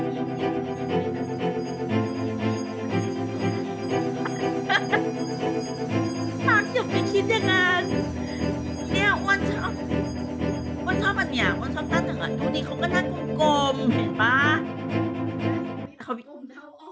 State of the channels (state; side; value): identical; both; correlation 1.00